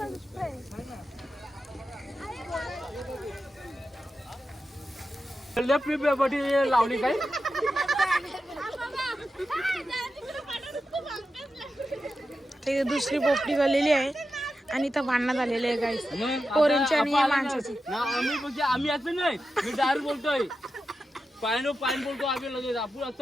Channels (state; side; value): normal; both; correlation 0.90